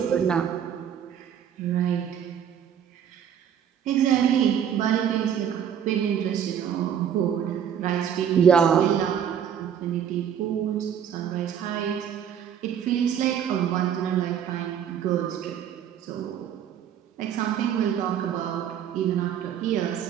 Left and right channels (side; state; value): left; quieter; 8.8 dB